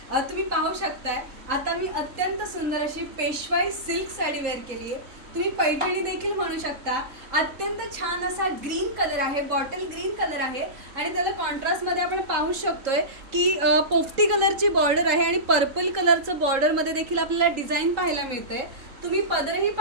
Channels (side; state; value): left; late; 3.8 ms